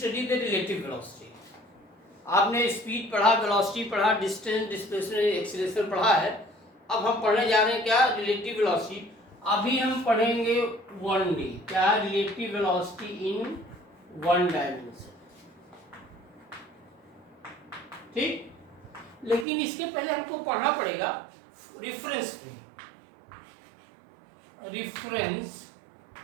the relative velocity. आपने speed पढ़ा, velocity पढ़ा, distance, displacement, acceleration पढ़ा है। अब हम पढ़ने जा रहे हैं क्या, रिलेटिव वेलोसिटी। अभी हम पढ़ेंगे 1D, क्या रिलेटिव वेलोसिटी इन 1 डायमेंशन। ठीक, लेकिन इसके पहले हमको पढ़ना पड़ेगा रिफरेंस फ्रेम। रिफरेंस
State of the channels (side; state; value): left; drops out; at 19.5 s